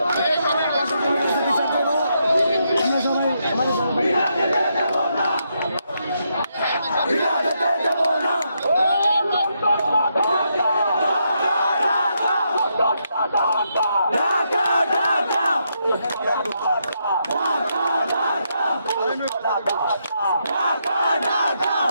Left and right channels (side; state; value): both; inverted; correlation -0.80